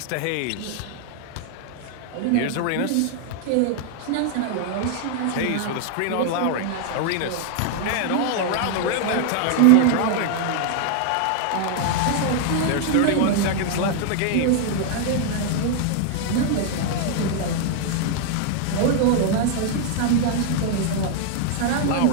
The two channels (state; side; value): different; both; correlation 0.00